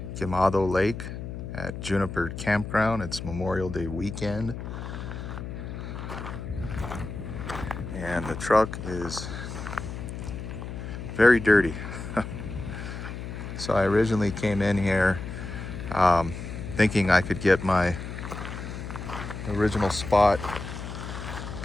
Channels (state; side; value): noise; left; hum, 8 dB below the sound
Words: Kimado Lake at Juniper Campground. It's Memorial Day weekend and the truck is very dirty. So I originally came in here thinking I could get my original spot